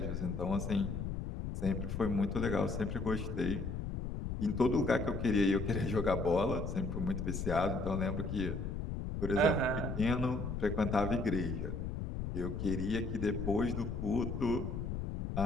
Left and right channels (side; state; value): left; noise; rumble, 4 dB below the sound